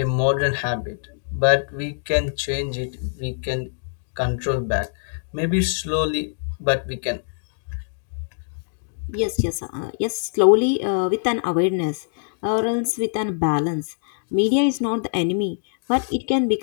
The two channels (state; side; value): silent; right; digital silence